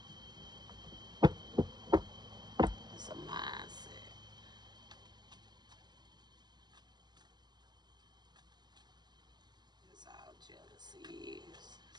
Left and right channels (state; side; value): late; left; 0.21 ms